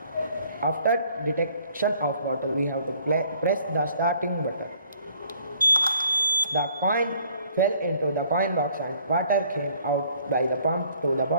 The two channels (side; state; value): both; inverted; correlation -0.60